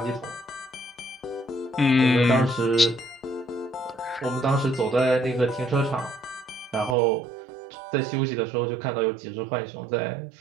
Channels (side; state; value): left; drops out; at 7.0 s